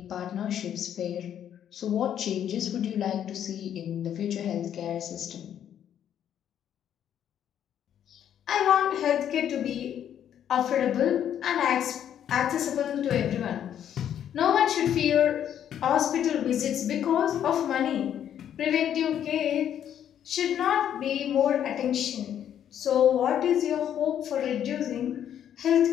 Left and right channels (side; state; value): right; quieter; 9.8 dB